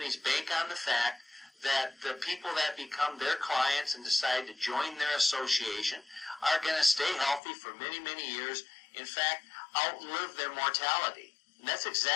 bank on the fact that the people that become their clients and decide to join their association are going to stay healthy for many, many years, in fact, outlive their mortality. And that's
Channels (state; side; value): drops out; right; at 7.4 s